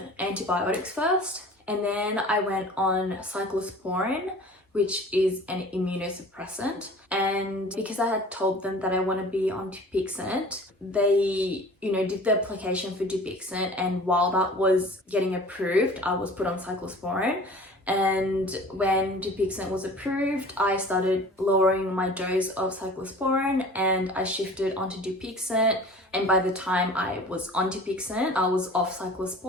antibiotics first. And then I went on cyclosporin, which is an immunosuppressant. And because I had told them that I want to be on Dupixent, they, did the application for Dupixent. And while that was getting approved, I was put on cyclosporin. And when Dupixent was approved, I started lowering my dose of cyclosporin and I shifted onto Dupixent. And by the time I was on Dupixent, I was off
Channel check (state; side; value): normal; both; correlation 0.43